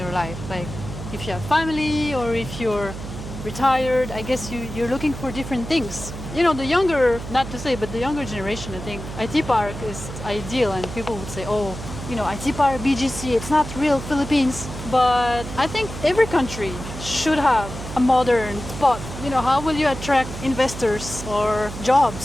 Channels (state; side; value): noise; right; hum, 9 dB below the sound